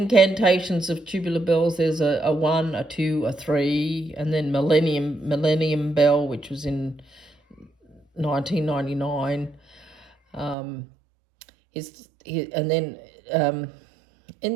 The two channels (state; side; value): drops out; left; at 10.6 s